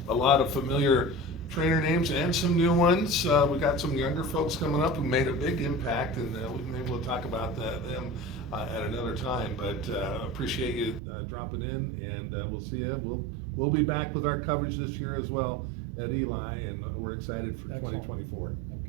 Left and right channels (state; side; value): drops out; left; at 11.0 s